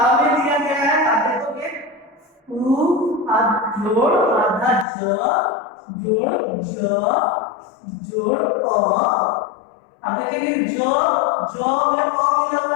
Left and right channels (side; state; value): right; drops out; at 4.9 s